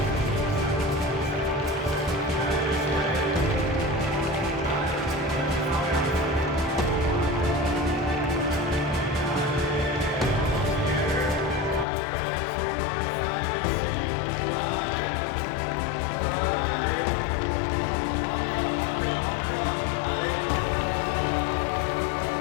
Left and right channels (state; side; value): drops out; right; at 11.9 s